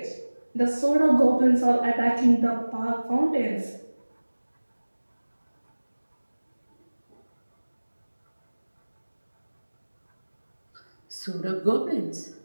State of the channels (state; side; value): inverted; both; correlation -1.00